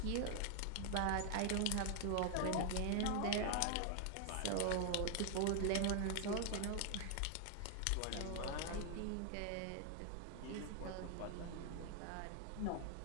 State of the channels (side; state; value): both; different; correlation 0.00